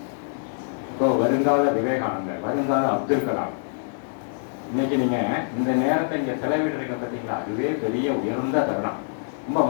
இப்போ வருங்கால விவேகானந்தர், வருங்கால அப்துல் கலாம், இன்னைக்கு நீங்க இந்த நேரத்தை இங்க செலவிடுறீங்க பார்த்தீங்களா, அதுவே பெரிய உயர்ந்த தருணம். ரொம்ப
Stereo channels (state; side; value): silent; right; digital silence